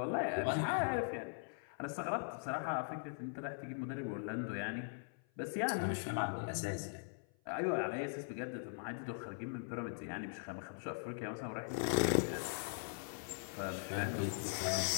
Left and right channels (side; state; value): right; silent; 51 dB below the other